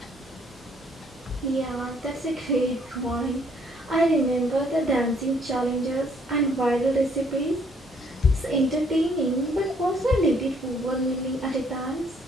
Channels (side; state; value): both; normal; correlation 0.65